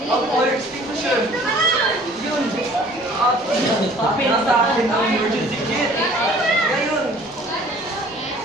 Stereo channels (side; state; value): left; noise; rumble, 27 dB below the sound